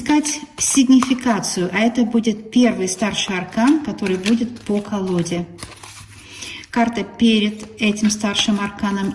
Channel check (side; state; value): both; identical; correlation 1.00